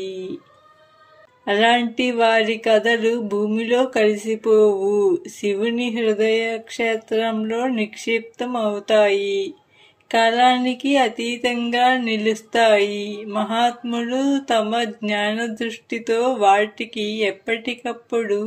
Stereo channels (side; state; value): both; identical; correlation 1.00